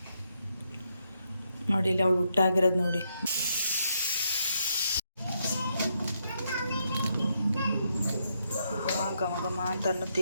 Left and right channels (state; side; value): inverted; both; correlation -0.79